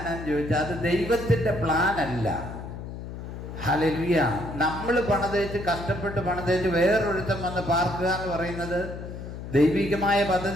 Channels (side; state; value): left; noise; hum, 9 dB below the sound